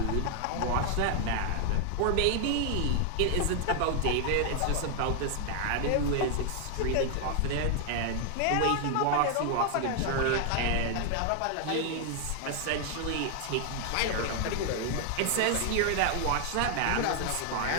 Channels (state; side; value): different; both; correlation 0.00